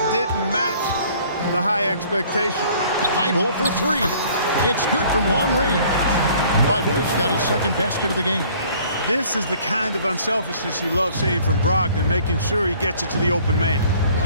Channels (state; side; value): inverted; both; correlation -0.55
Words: didn't match the high expectation. Thibault for 3. It's good from long range. Thibault's got his second basket of the game. This is the kind of unselfishness you love seeing from Brogdon, making sure he gets it to the open man.